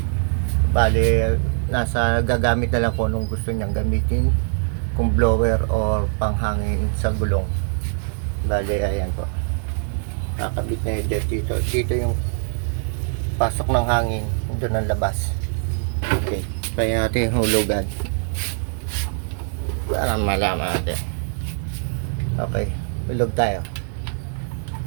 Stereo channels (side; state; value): left; silent; 61 dB below the other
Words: Bale, nasa gagamit na lang kung anong gusto niyang gamitin, kung blower or panghangin sa gulong. Bale, ayan po. Kakabit na yun dito. Dito yung pasok ng hangin. Doon ang labas. Okay. Kaya natin yung hulugan. Para malaman natin. Okay. Hulog tayo.